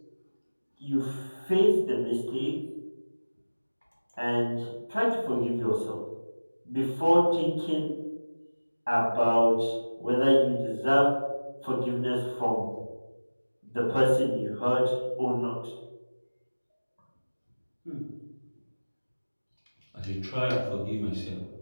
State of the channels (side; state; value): both; inverted; correlation -1.00